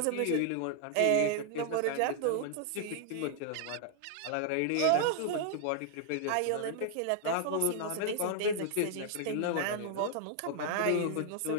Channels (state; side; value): different; both; correlation 0.00